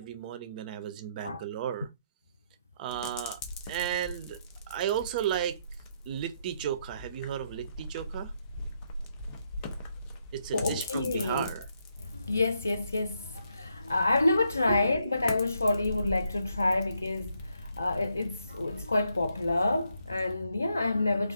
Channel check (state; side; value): inverted; both; correlation -0.76